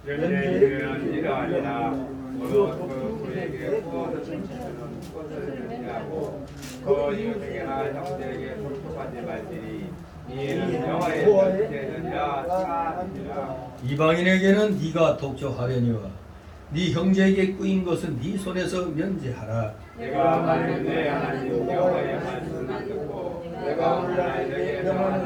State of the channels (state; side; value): identical; both; correlation 1.00